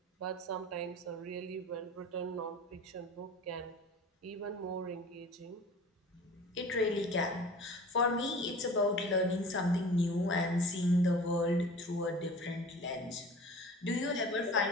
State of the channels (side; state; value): both; normal; correlation 0.41